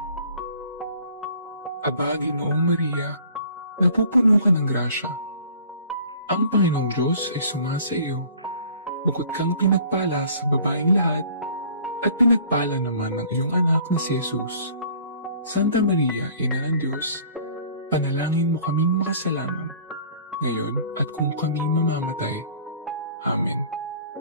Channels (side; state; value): both; inverted; correlation -0.50